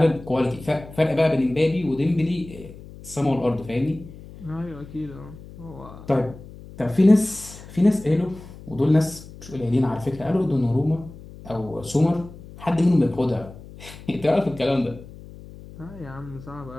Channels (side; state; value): left; noise; hum, 17 dB below the sound